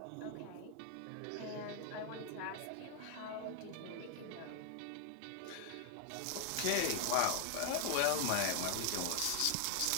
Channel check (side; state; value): both; different; correlation 0.00